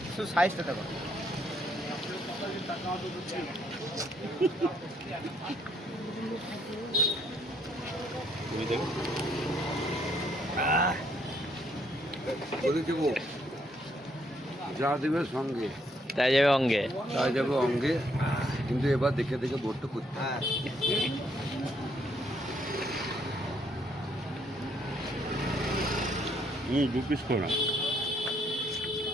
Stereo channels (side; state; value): both; normal; correlation 0.70